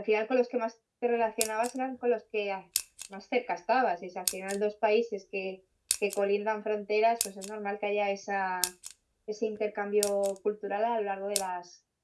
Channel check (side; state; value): both; identical; correlation 1.00